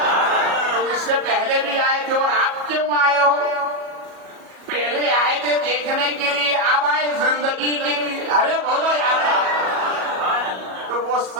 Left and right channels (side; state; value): left; late; 37 ms